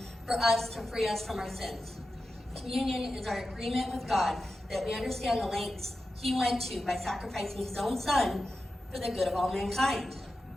for us to free us from our sins. Communion is our agreement with God that we understand the lengths he went to by sacrificing his own son for the good of all mankind.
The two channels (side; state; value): both; normal; correlation 0.92